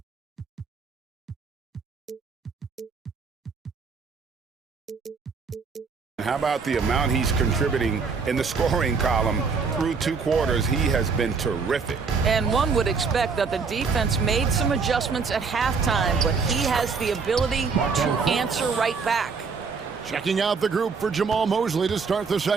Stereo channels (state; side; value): quieter; left; 5.2 dB